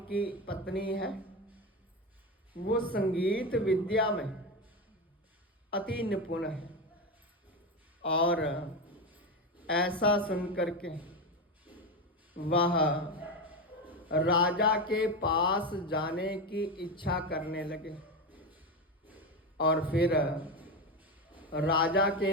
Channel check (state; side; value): normal; both; correlation 0.16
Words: पत्नी है। वो संगीत विद्या में अति निपुण है। और ऐसा सुनकर के वह राजा के पास जाने की इच्छा करने लगे। और फिर राजा के